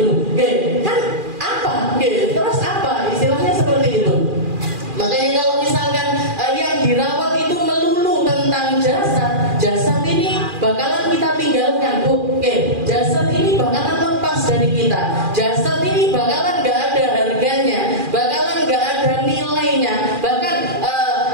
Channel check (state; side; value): late; left; 2.4 ms